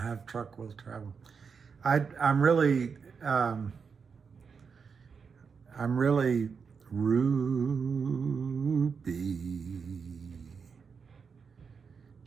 truck will travel. I'm really Ruby.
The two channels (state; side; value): quieter; left; 5.8 dB